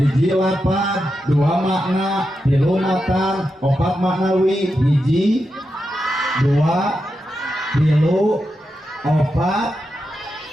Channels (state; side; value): normal; both; correlation 0.88